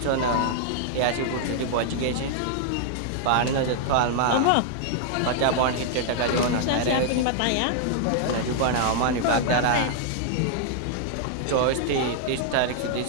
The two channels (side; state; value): both; different; correlation 0.00